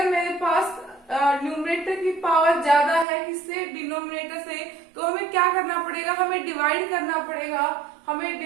मेरे पास न्यूमरेटर की पावर ज्यादा है किससे? डिनोमिनेटर से, तो हमें क्या करना पड़ेगा? हमें डिवाइड करना पड़ेगा। हमें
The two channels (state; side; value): drops out; left; at 3.1 s